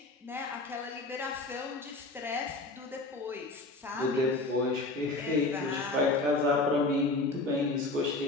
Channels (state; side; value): quieter; right; 3.1 dB